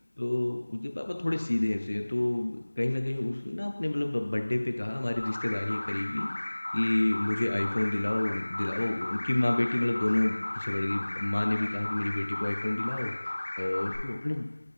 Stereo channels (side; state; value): both; inverted; correlation -1.00